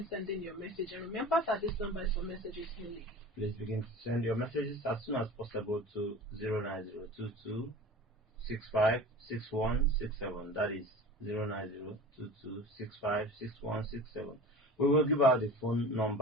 sending your message, and remember that this number is for messages only. Please begin to send your messages as soon as possible to 09022 65 6167. That is 09022 65 6167. We will give out the phone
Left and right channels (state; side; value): normal; both; correlation 0.36